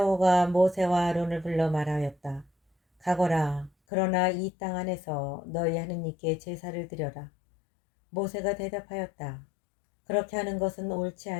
모세와 아론을 불러 말하였다. 가거라. 그러나 이 땅 안에서 너희 하느님께 제사를 드려라. 모세가 대답하였다. 그렇게 하는 것은 옳지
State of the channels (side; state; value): right; drops out; at 3.7 s